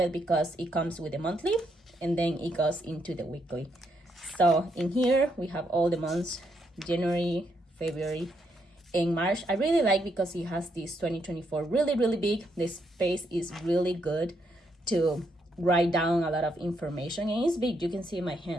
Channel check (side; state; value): both; normal; correlation 0.77